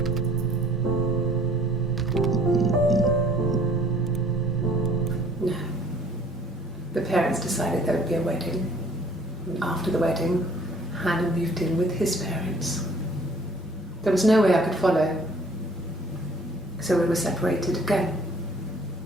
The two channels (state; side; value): normal; both; correlation 0.56